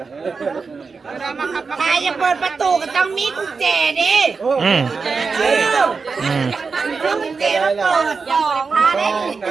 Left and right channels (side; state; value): left; quieter; 4.8 dB